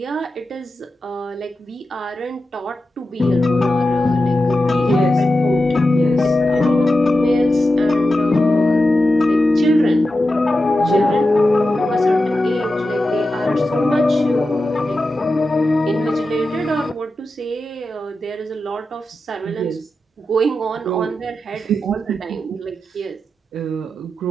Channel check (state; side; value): normal; both; correlation 0.91